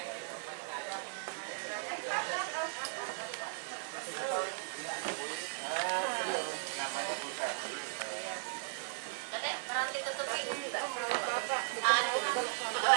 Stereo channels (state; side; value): silent; left; 53 dB below the other